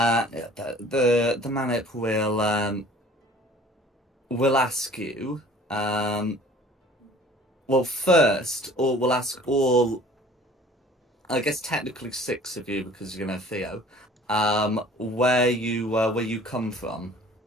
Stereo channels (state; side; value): normal; both; correlation 0.49